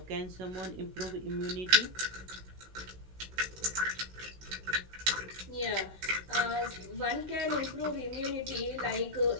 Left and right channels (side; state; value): left; late; 16 ms